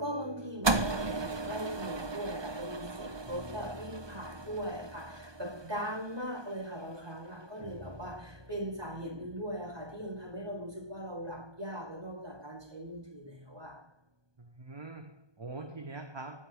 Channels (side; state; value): left; late; 1.2 ms